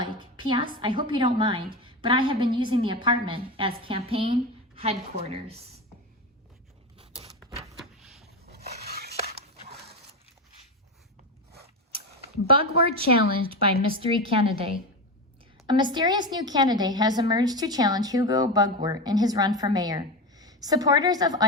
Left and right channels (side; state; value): both; normal; correlation 0.19